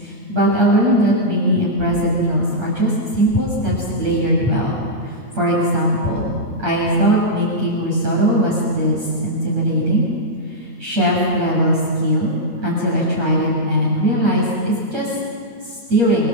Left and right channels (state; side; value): late; left; 8.5 ms